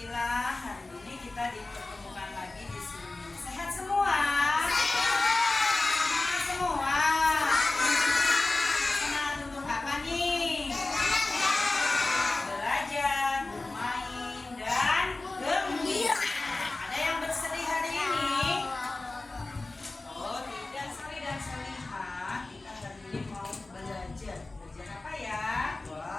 hari ini kita dipertemukan lagi di sini. Sehat semua? Sehat semua. Senang untuk apa nih? Belajar, bermain, dan gembira. Ada yang bersedih hari ini? Oh, tidak, Sali dan Salihah. Kita hari ini mau belajar. Belajar apa ya?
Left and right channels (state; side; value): quieter; right; 3.1 dB